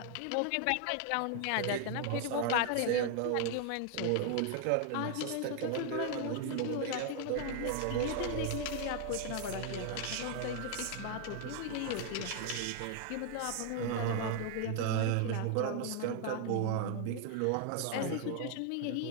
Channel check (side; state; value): both; different; correlation 0.00